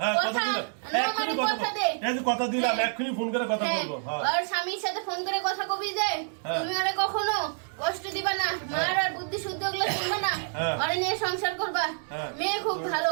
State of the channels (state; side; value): silent; left; 59 dB below the other